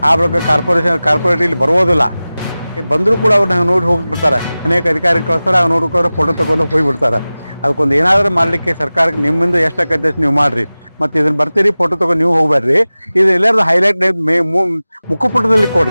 ಆ ಬಳಿಕ ಕಾರ್ಪೊರೇಟ್ ಇಲ್ಲಿ ಬರುವುದಿಲ್ಲ. ಬಂದರೂ ಕೂಡ ಅವ್ರನ್ನ ನೋಡಿ ಹೋಗಿಬಿಡ್ತಾರೆ. ಅನೇಕ ಅಧಿಕಾರಿ ಕಳಿಸ್ತಾರೆ, ಅವ್ರು ನೋಡ್ಕೊಂಡು ಫೋಟೋ ತಗೊಂಡು ಹೋಗಿಬಿಡ್ತಾರೆ. ಅದಕ್ಕೊಂದು ಏನಾದರೂ ಮಾಡಲಿಕ್ಕೆ ಸರ್ಕಾರಕ್ಕೆ ನಿಮ್ಮಿಂದ ಎಷ್ಟಾಗತ್ತೆ ಅಷ್ಟು ನೀವು ಮಾಡ್ರಿ. ಮತ್ತು ಇದನ್ನ ಬರ್ತೀರಿ ಫೋಟೋ ತಗೊಂಡು ನೀವು ಹೋಗ್ಬೇಡ್ರಿ. ಇದು ಎಲ್ಲಾರು ಹೈಲೈಟ್ ಮುಖಪುಟದಲ್ಲಿ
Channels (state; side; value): inverted; both; correlation -0.97